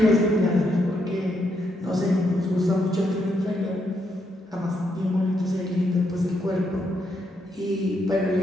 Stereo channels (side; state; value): both; normal; correlation 0.78